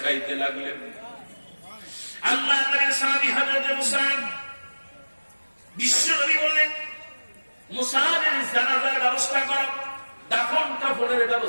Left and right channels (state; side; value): inverted; both; correlation -1.00